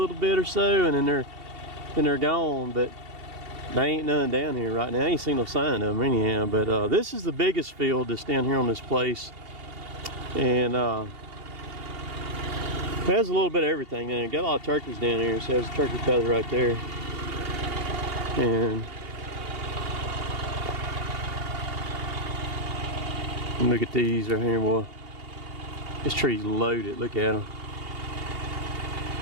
bit or so, and then they're gone. But there ain't none down here right now. I ain't seen no sign of them anyhow. But this is the biggest field that's down here on this place, and it has a little bit of everything in it. Got a lot of turkeys down here. So there's a turkey feather right there. And look at these right here, boy. This tree's loaded. Look at them.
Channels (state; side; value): late; left; 2.8 ms